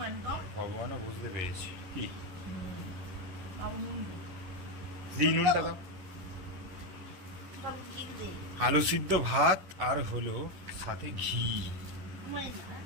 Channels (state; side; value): late; left; 11 ms